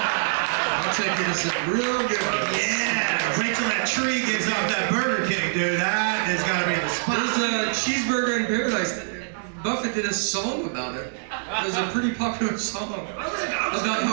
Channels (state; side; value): silent; left; digital silence